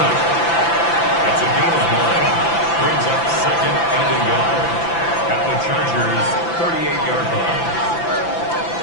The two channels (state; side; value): late; right; 5.9 ms